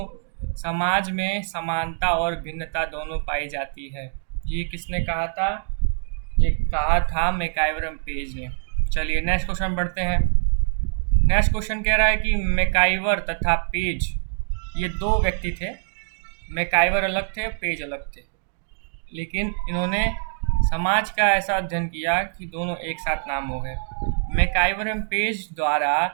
समाज में समानता और भिन्नता दोनों पाई जाती है, ये किसने कहा था? ये कहा था मैकआइवर एवं पेज ने। चलिए नेक्स्ट क्वेश्चन बढ़ते हैं। नेक्स्ट क्वेश्चन कह रहा है कि मैकआइवर तथा पेज ये दो व्यक्ति थे। मैकआइवर अलग थे, पेज अलग थे, लेकिन इन्होंने समाज का ऐसा अध्ययन किया कि दोनों एक साथ नाम हो गए। मैकआइवर एवं पेज द्वारा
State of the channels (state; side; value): silent; left; digital silence